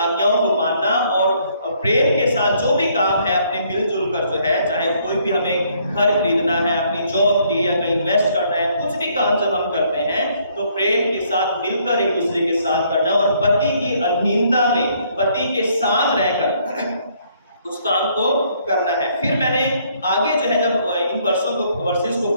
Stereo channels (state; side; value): inverted; both; correlation -0.67